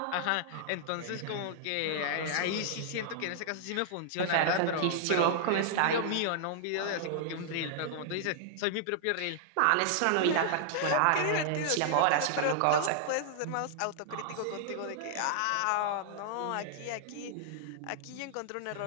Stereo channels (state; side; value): different; both; correlation -0.01